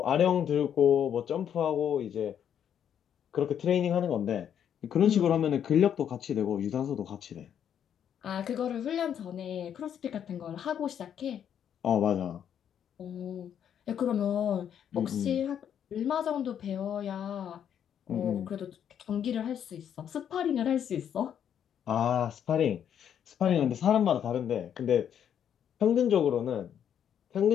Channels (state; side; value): quieter; right; 9.0 dB